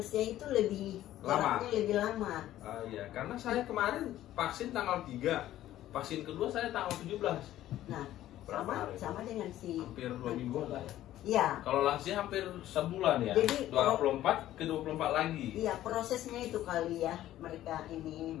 itu lebih lama. Lebih lama. Iya, karena saya kemarin vaksin tanggal 3. Vaksin kedua saya tanggal 17. Nah, sama dengan si hampir 2 minggu lah ya. Iya. Kalau lansia hampir sebulan ya. Jadi 24 ke 24 lagi. Iya, prosesnya itu kali ya mereka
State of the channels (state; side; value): quieter; right; 13.6 dB